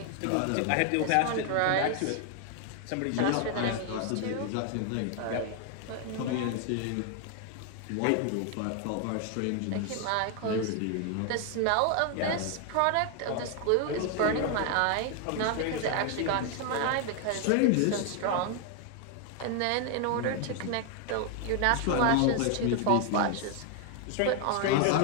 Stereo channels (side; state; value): both; different; correlation 0.00